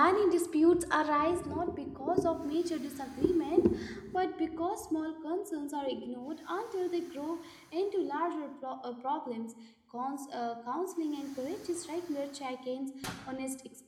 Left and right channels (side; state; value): both; identical; correlation 1.00